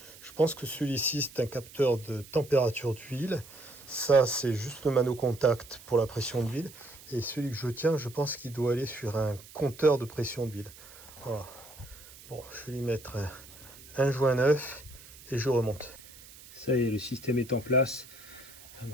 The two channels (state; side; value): noise; right; hiss, 19 dB below the sound